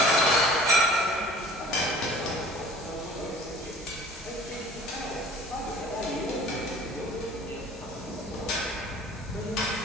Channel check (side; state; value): both; normal; correlation 0.48